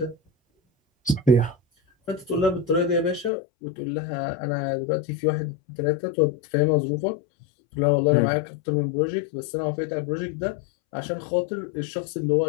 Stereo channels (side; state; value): right; drops out; at 3.3 s